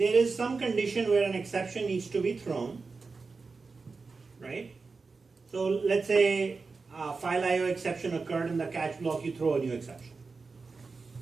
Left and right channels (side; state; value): left; quieter; 4.4 dB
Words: is some condition where an exception needs to be thrown, right? So let's say file IO exception occurred in the catch block, you throw a new exception.